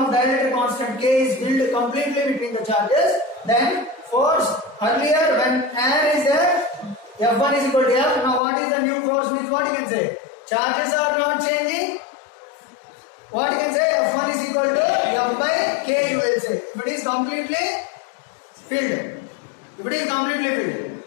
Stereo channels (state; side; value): drops out; right; at 8.4 s